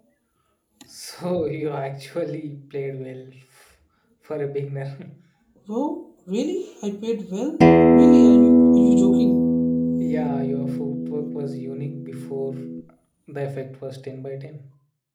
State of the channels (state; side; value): identical; both; correlation 1.00